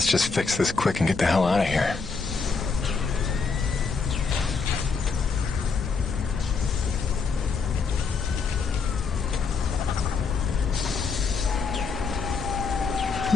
just fix this quick and get the hell out of here.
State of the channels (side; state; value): right; quieter; 4.9 dB